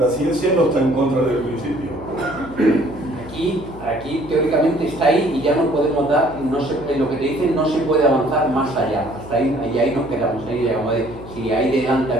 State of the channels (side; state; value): left; noise; hum, 16 dB below the sound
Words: ciencia no está en contra del principio. Aquí teóricamente está ahí y ya no podemos dar, en lo que te dicen no se puede avanzar más allá, hasta ahí, y ahí nos quedamos, ahí llegamos si ahí delante